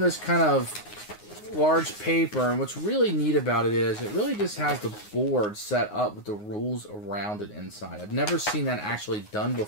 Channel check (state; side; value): late; right; 9.6 ms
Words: kind of large paper, and what's really neat about it is it really just has the board set up with the rules around it inside. I've never seen that actually done